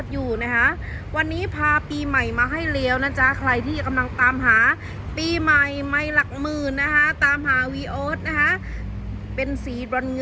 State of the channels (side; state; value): both; identical; correlation 1.00